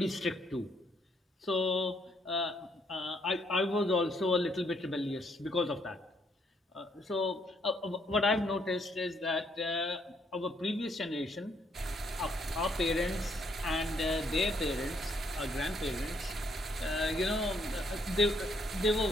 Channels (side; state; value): both; normal; correlation 0.71